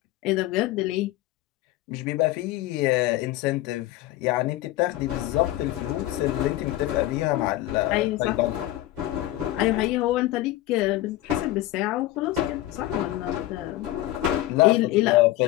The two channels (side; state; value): right; quieter; 15.8 dB